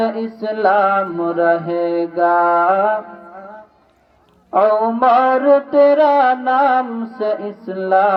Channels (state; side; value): identical; both; correlation 1.00